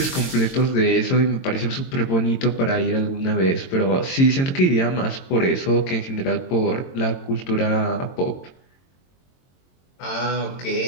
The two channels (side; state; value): right; late; 22 ms